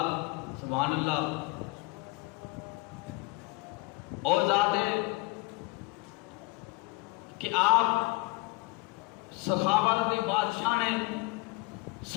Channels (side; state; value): right; quieter; 24.5 dB